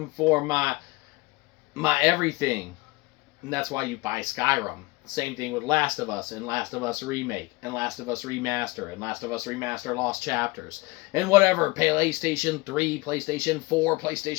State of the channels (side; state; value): right; quieter; 23.1 dB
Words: for my everything. And that's why you buy Skyrim. Same thing with Last of Us and Last of Us Remake and Last of Us Remaster and Last of Us Remaster Lost Chapters and whatever. PlayStation 3, PlayStation 4,